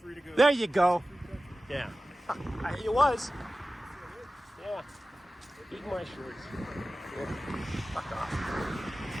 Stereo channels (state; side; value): normal; both; correlation 0.96